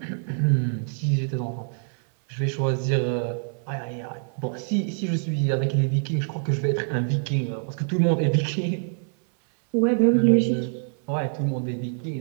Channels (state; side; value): silent; left; 62 dB below the other